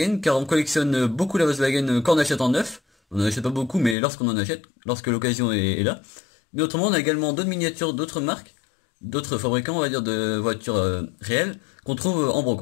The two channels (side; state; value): right; drops out; at 4.0 s